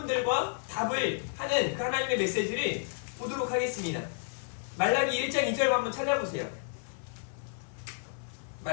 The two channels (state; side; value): silent; right; 56 dB below the other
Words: 답을 하는 그 하나님의 메시지를 보도록 하겠습니다. 말라기 1장 2절 한번 찾아보세요.